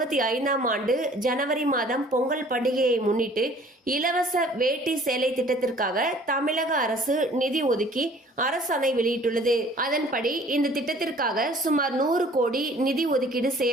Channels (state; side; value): normal; both; correlation 0.53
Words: ஆண்டு ஜனவரி மாதம் பொங்கல் பண்டிகையை முன்னிட்டு இலவச வேட்டி சேலை திட்டத்திற்காக தமிழக அரசு நிதி ஒதுக்கி அரசாணை வெளியிட்டுள்ளது. அதன்படி இந்த திட்டத்திற்காக சுமார் 100 கோடி நிதி ஒதுக்கீடு